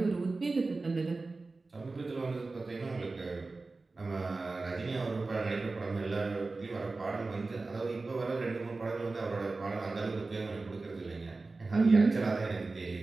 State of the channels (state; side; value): quieter; left; 3.6 dB